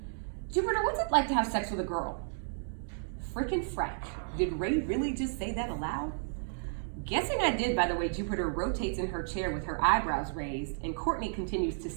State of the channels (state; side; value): silent; left; digital silence